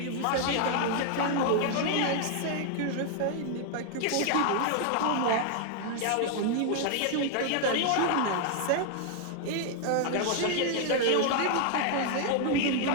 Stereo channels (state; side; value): different; both; correlation 0.00